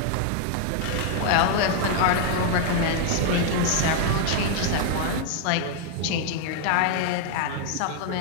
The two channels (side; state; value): both; different; correlation 0.00